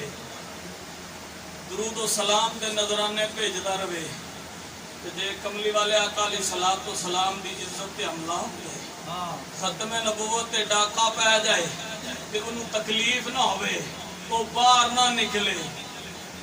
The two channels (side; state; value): both; identical; correlation 1.00